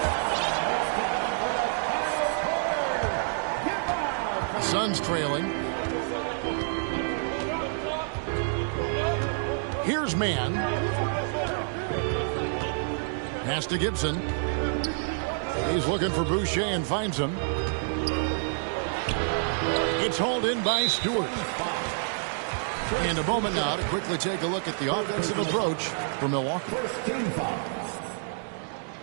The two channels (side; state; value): left; silent; digital silence